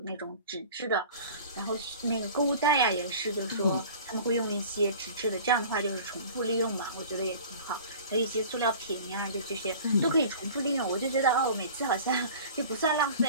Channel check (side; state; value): both; inverted; correlation -0.42